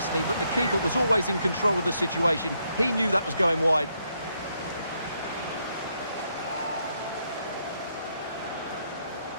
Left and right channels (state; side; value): inverted; both; correlation -0.76